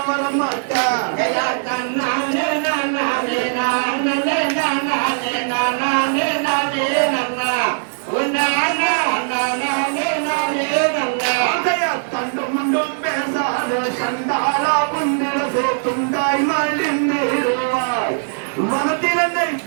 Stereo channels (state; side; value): silent; left; digital silence